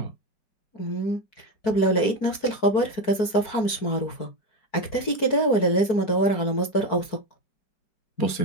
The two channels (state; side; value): late; right; 4.6 ms